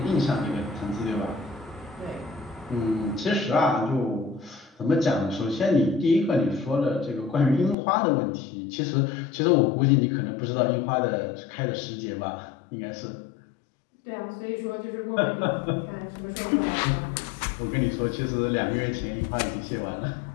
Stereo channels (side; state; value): right; drops out; at 7.8 s